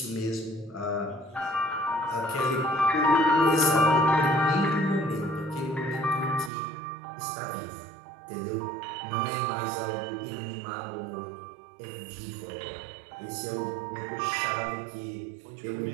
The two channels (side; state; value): left; drops out; at 6.5 s